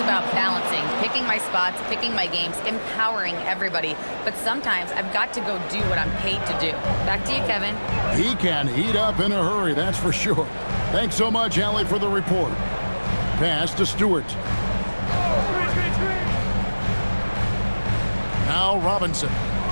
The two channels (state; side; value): inverted; both; correlation -1.00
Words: about balancing, picking my spots, picking my games, empowering everybody. But sometimes I've got to go do what I'm paid to do." Back to you, Kevin. He can heat up in a hurry, that's for sure. Thanks so much, Allie, for the report. Pass to Stewart. Now Robinson.